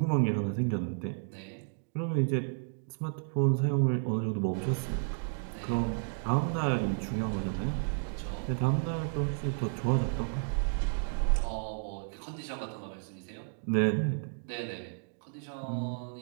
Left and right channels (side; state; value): left; silent; digital silence